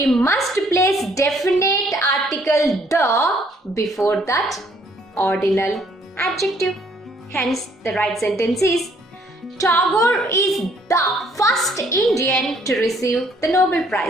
must place definite article the before that ordinal adjective. Hence the right sentence is, Tagore is the first Indian to receive the Nobel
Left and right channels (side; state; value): both; normal; correlation 0.64